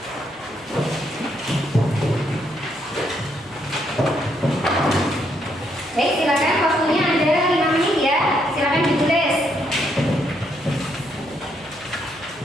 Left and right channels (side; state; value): both; normal; correlation 0.74